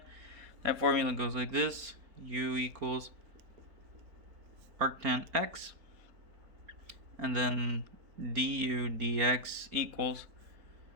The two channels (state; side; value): late; left; 4.4 ms